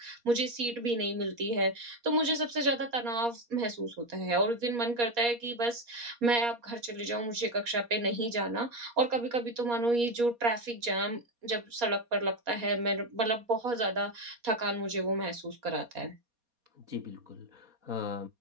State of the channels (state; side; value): late; left; 4.2 ms